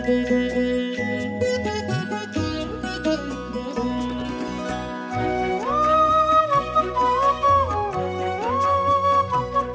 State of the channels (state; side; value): identical; both; correlation 1.00